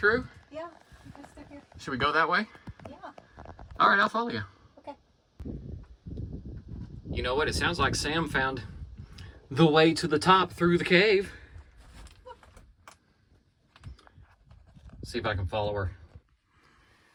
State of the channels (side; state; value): both; identical; correlation 1.00